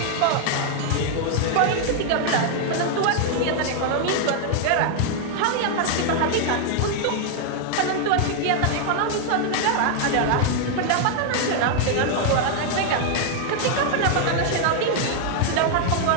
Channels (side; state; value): both; different; correlation 0.00